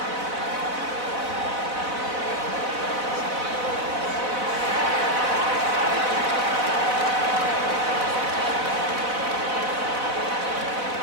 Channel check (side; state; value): left; late; 4.0 ms